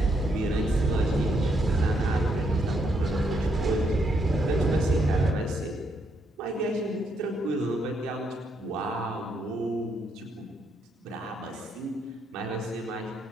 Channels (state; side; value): normal; both; correlation 0.76